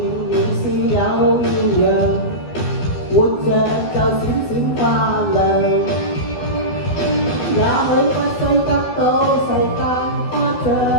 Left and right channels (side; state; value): right; late; 12 ms